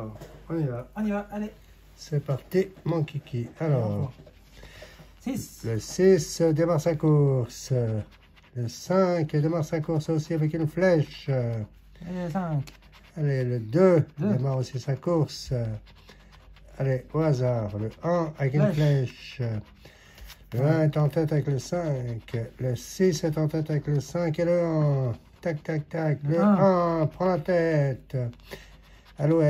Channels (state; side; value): identical; both; correlation 1.00